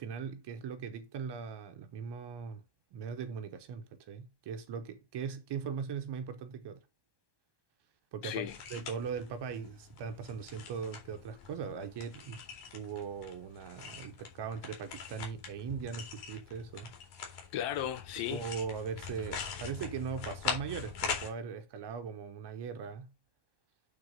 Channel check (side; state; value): left; late; 1.2 ms